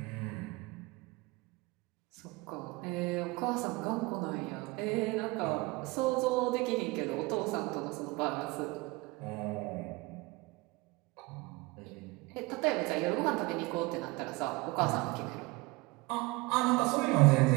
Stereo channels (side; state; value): left; quieter; 23.6 dB